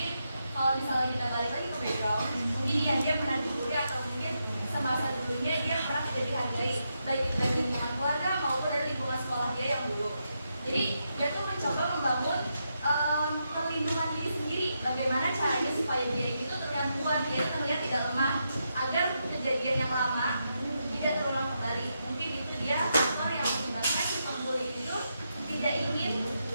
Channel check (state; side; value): inverted; both; correlation -0.83